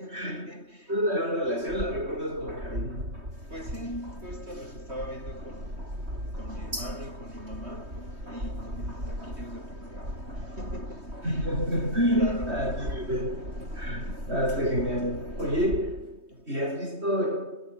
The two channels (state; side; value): late; left; 3.2 ms